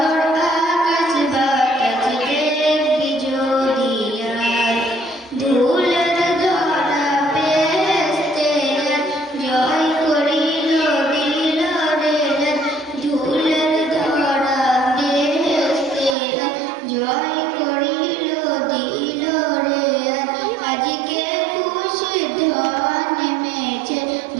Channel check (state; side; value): drops out; left; at 16.2 s